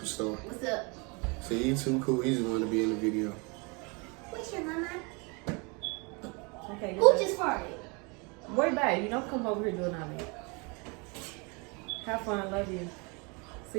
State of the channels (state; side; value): quieter; left; 30.8 dB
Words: What's up? See, he too cool. He just want to be in the video. What's your mama? Okay, Who just farted? Worry about it. You don't come over here doing all that. Have fun. Love you.